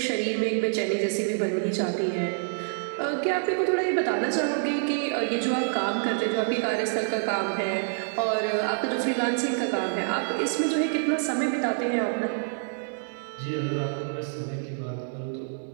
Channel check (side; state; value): left; silent; digital silence